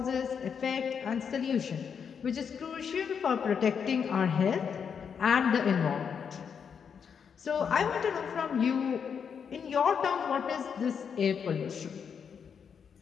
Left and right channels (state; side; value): quieter; right; 6.9 dB